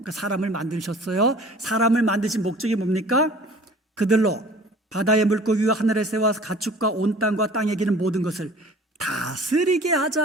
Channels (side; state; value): both; normal; correlation 0.47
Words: 사람을 만드셨어요. 사람을 만드신 목적이 뭡니까? 그들로 바다의 물고기와 하늘의 새와 가축과 온 땅과 땅에 기는 모든 것을 다스리게